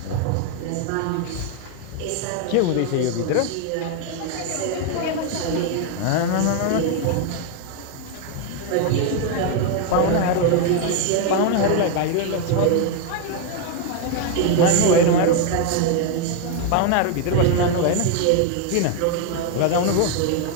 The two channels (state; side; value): different; both; correlation 0.01